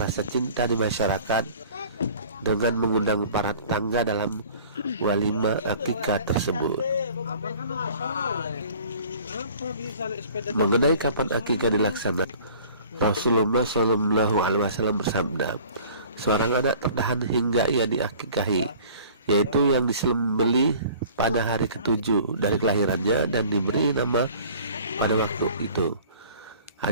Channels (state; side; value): inverted; both; correlation -0.48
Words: cinta di masyarakat dengan mengundang para tetangga dalam walimah akikah tersebut. Mengenai kapan akikah dilaksanakan, Rasulullah Shallallahu Alaihi Wasallam bersabda, seorang anak tertahan hingga ia diakikahi, yaitu yang disembelih pada hari ke-7 dari kelahirannya dan diberi nama pada waktu itu.